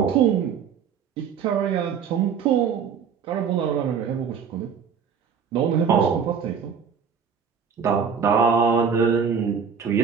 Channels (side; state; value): left; quieter; 6.8 dB